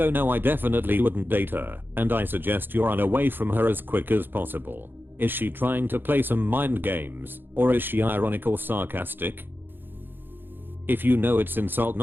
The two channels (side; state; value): left; late; 0.098 ms